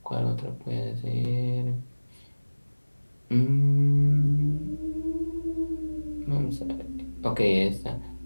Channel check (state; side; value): inverted; both; correlation -1.00